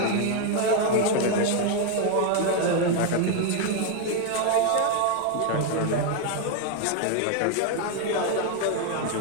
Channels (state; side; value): different; both; correlation 0.01